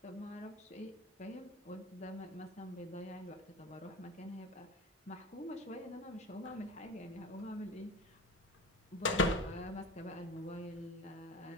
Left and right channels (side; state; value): both; normal; correlation 0.31